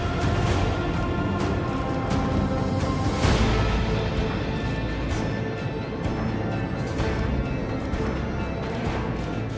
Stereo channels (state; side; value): identical; both; correlation 1.00